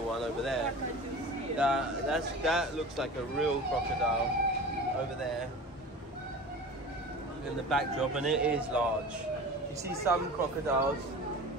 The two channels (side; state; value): both; normal; correlation 0.36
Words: one over there. That looks like a real crocodile over there in the backdrop, and it is large. You see some crocodiles.